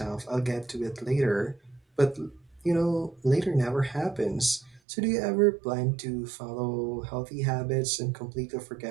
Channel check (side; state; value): left; drops out; at 4.8 s